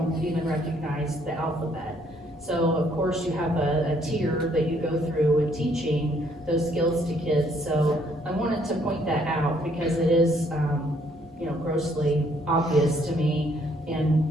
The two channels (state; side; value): normal; both; correlation 0.67